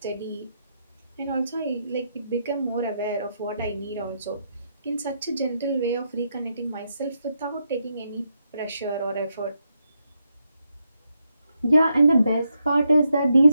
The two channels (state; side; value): inverted; both; correlation -0.81